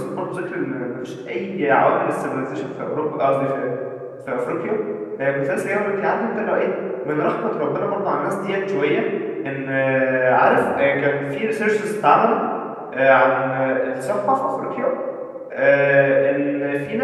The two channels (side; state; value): both; identical; correlation 1.00